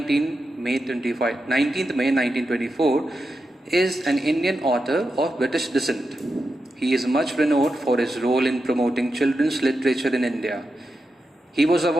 May 1924, is an Indian author of British descent. He is much renowned for his role in promoting children's literature in India. He was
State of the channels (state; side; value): normal; both; correlation 0.88